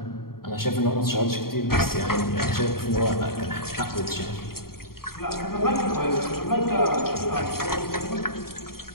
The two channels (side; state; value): right; late; 0.93 ms